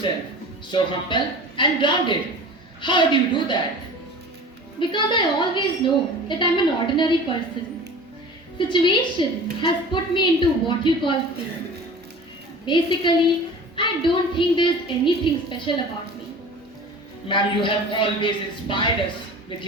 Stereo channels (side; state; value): both; normal; correlation 0.39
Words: so humble and grounded. How do you do that? Because I always know that I'm an ordinary person. Situation has put me into what you call fame. Basically, I don't think there's anything special about me. Ma'am, you have always inspired us with